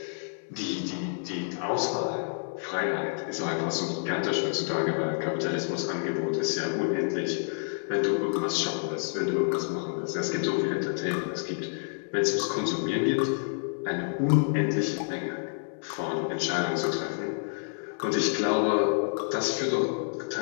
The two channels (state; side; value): silent; right; 58 dB below the other